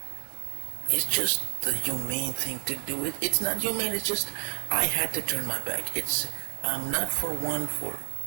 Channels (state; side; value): silent; left; digital silence